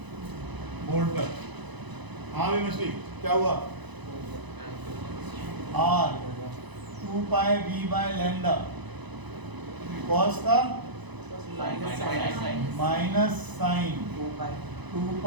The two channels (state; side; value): late; left; 1.0 ms